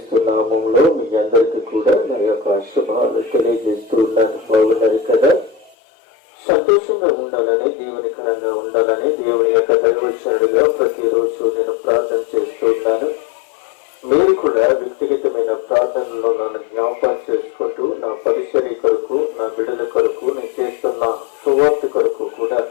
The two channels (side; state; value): right; drops out; at 5.7 s